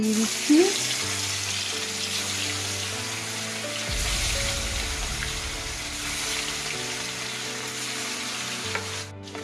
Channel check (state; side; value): identical; both; correlation 1.00